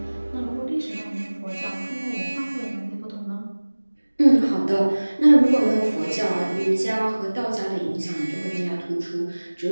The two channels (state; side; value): inverted; both; correlation -1.00